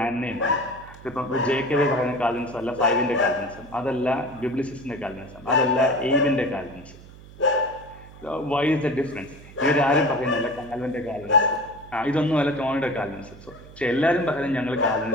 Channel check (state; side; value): noise; right; hum, 19 dB below the sound